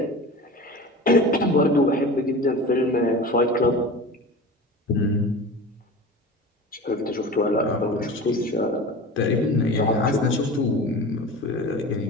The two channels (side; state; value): both; normal; correlation 0.34